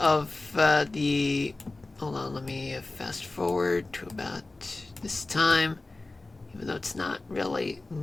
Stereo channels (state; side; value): quieter; right; 3.1 dB